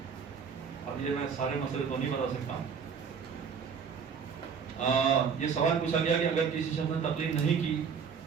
اب یہ میں سارے مسئلے تو نہیں بتا سکتا. یہ سوال پوچھا گیا کہ اگر کسی شخص نے تقلید نہیں کی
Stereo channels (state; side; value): quieter; left; 6.4 dB